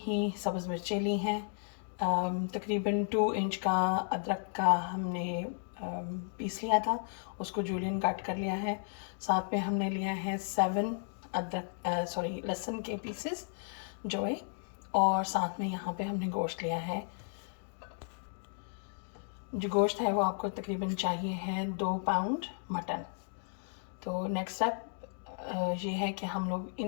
सब्ज़ मिर्चें ली हैं। तकरीबन 2 इंच का अदरक का हमने पीस लिया था, उसको जूलियन कट कर लिया है। साथ में हमने लिया है 7 लहसुन के पीसेस जोए, और साथ में यहाँ पे हमने गोश्त लिया है। जो गोश्त है वो आपको तकरीबन चाहिए है 2 पाउंड मटन। तो नेक्स्ट स्टेप ये है कि हम लोग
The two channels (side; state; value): right; silent; 55 dB below the other